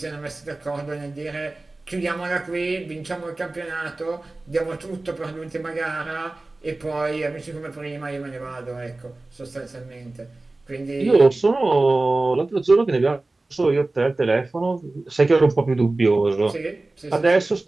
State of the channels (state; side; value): quieter; left; 3.1 dB